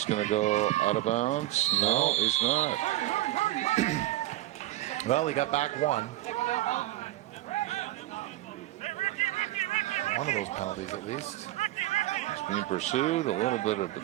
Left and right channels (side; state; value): left; quieter; 16.0 dB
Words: going to go out of bounds. No, he's not. Well, he got back one. One of those penalties, at least. He's being pursued. A little bit of